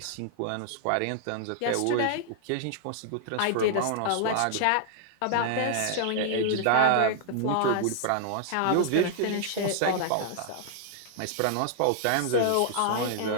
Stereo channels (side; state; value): both; different; correlation 0.00